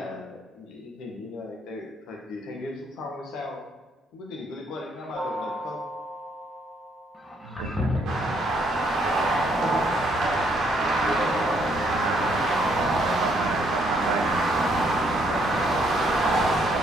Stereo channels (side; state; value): both; normal; correlation 0.70